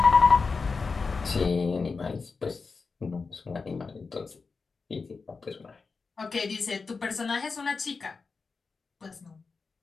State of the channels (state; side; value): quieter; right; 4.6 dB